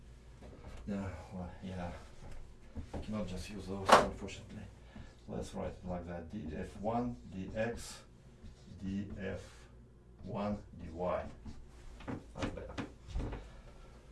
No, well, yeah. I cannot just use those, unfortunately. Let's write it like that. df1 dx df1 dy. That's better.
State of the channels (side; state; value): both; identical; correlation 1.00